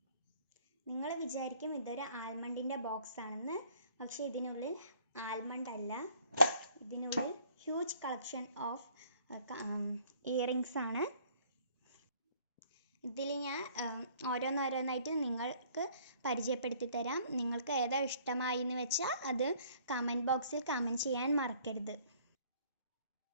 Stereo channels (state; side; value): inverted; both; correlation -0.59